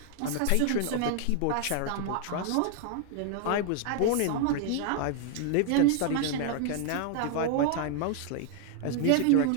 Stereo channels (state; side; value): different; both; correlation 0.00